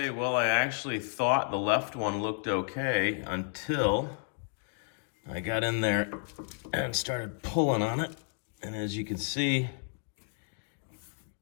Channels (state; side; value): silent; right; 57 dB below the other